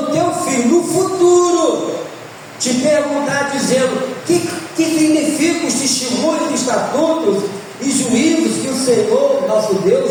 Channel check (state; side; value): identical; both; correlation 1.00